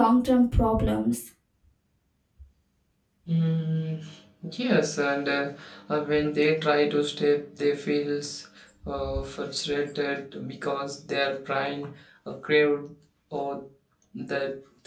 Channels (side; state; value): both; identical; correlation 1.00